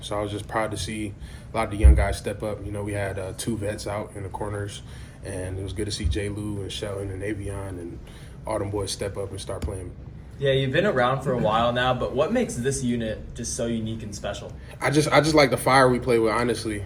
So I was just proud to see a lot of the young guys step up. You know, we had 2 vets out in the corners, and it was good to see J. Lou and Shelton and Avion and all them boys step up and start playing. Yeah, you've been around for a while now, but what makes this unit just so unique and special? I just like the fire we play with, honestly,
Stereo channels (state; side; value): identical; both; correlation 1.00